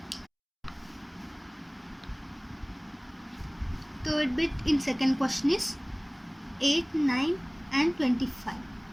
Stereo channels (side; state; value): both; identical; correlation 1.00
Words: Third bit in second question is 8, 9 and 25.